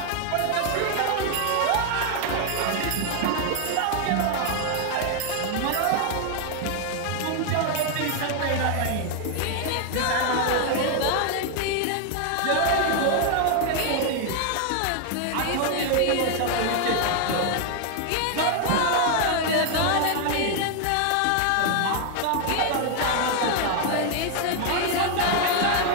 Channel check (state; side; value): different; both; correlation 0.00